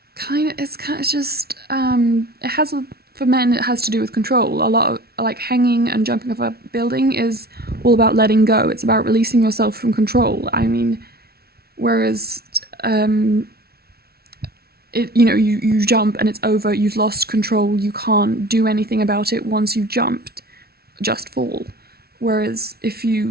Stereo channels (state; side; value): late; left; 0.45 ms